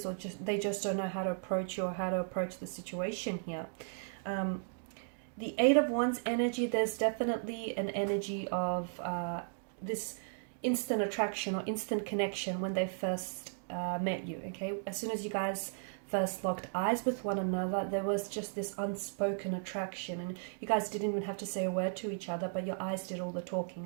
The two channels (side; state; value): left; silent; digital silence